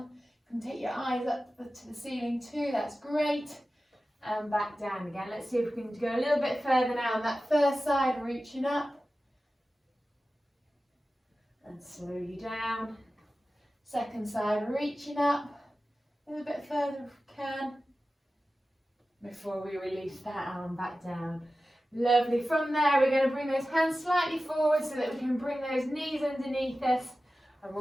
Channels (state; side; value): normal; both; correlation 0.95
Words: You can take your eyes up to the ceiling too, that's great. And back down again. Let's see if we can go a little bit further now on that first side, reaching up. And slowly down. Second side, reaching up. A little bit further if we can. Before we release that arm back down. Lovely. From there, we're going to bring those hands slightly forward so that we can bring those knees underneath us, and